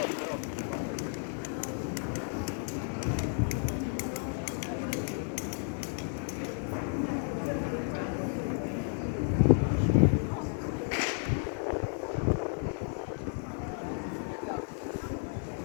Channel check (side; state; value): right; silent; 56 dB below the other